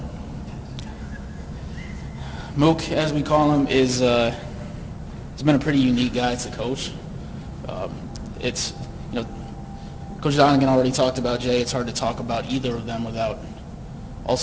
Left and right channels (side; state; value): both; identical; correlation 1.00